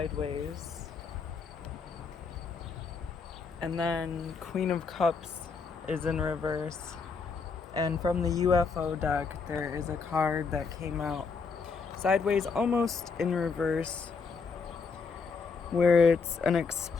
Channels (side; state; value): right; quieter; 5.0 dB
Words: And then Queen of Cups is in reverse. And from the UFO deck, there is a card that came out sideways, almost in reverse, where it's an